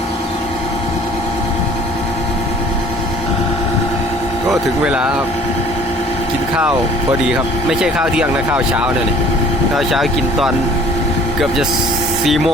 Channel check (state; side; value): normal; both; correlation 0.52